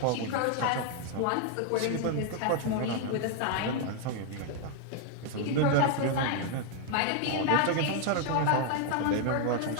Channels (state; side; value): different; both; correlation 0.00